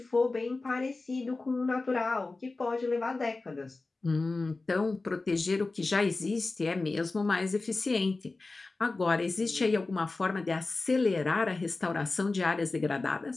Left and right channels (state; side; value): quieter; right; 3.5 dB